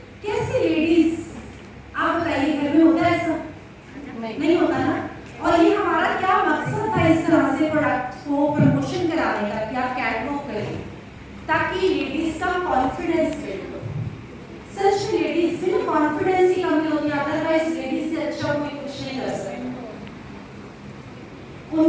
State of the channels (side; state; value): both; identical; correlation 1.00